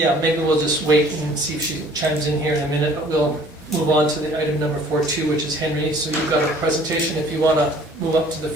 maybe we'll just wait and see if she chimes in here in a minute, but we'll move on to the item number 4.2, which is Henry. So you've got a presentation if you want to move up to the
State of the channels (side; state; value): both; normal; correlation 0.54